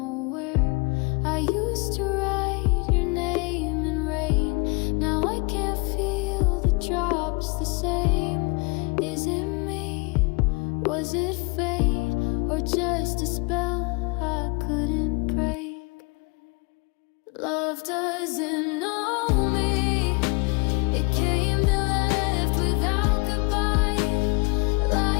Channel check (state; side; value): quieter; right; 28.9 dB